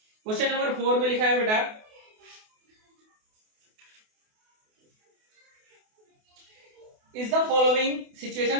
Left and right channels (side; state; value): left; late; 28 ms